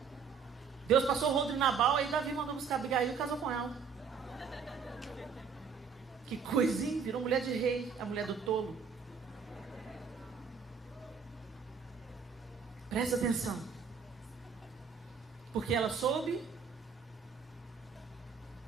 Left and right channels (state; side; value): quieter; left; 6.0 dB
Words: Deus passou o rodo de Nabal, aí Davi mandou buscar Abigail e casou com ela. Que coisinha, virou mulher de rei, a mulher do tolo. Presta atenção. Porque ela soube,